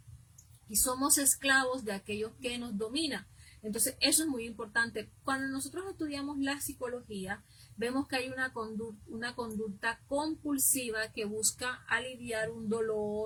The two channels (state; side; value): identical; both; correlation 1.00